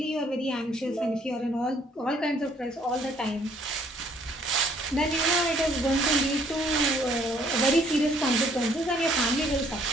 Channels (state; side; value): normal; both; correlation 0.63